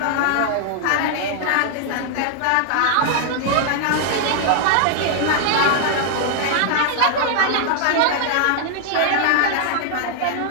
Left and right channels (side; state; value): both; different; correlation 0.00